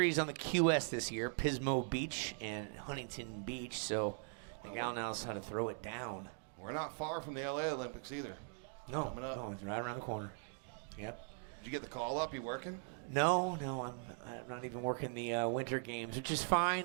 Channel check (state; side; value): silent; left; 51 dB below the other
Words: on the QS this year, Pismo Beach and Huntington Beach. So the gal knows how to throw it down. We're not far from the LA Olympics either. No, Coming up. no, it's right around the corner. Yep. Did you get the call up? You working? No, I'm not even working the winter games, which is fine.